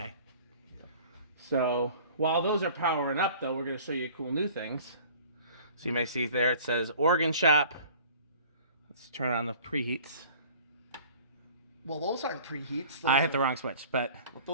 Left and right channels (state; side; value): inverted; both; correlation -0.47